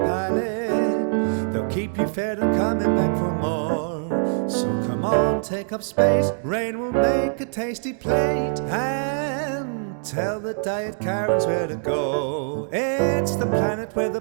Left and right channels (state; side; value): silent; left; 63 dB below the other